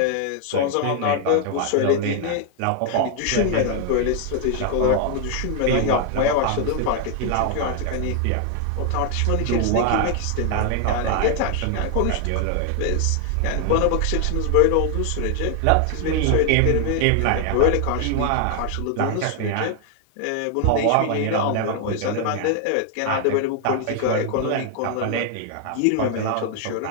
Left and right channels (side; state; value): both; different; correlation 0.00